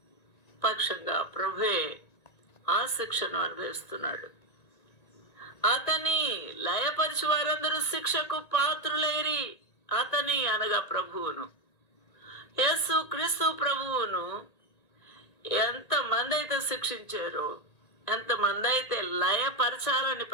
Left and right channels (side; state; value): right; late; 1.9 ms